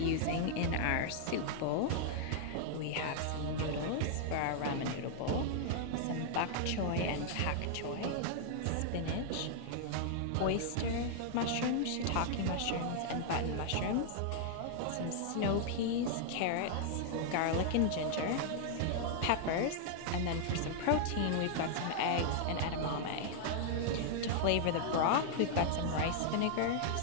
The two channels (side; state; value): both; different; correlation -0.01